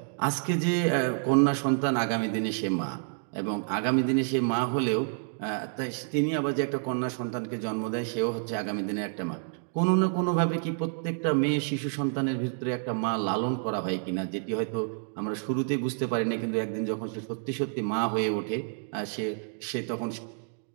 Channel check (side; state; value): left; silent; digital silence